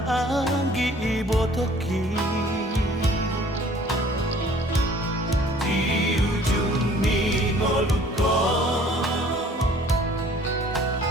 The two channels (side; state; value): both; normal; correlation 0.54